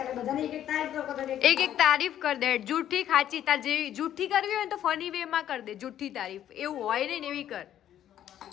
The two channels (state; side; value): quieter; right; 11.1 dB